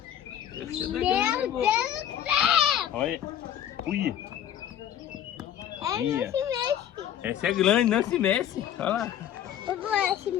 Meu Deus do céu! Olha. Ui. É isso mesmo. Essa é grande, não se mexe. Olha lá. Eu vou se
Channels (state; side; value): quieter; right; 10.4 dB